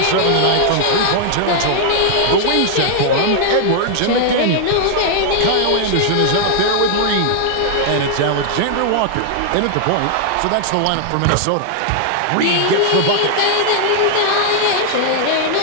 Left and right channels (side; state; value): both; different; correlation 0.00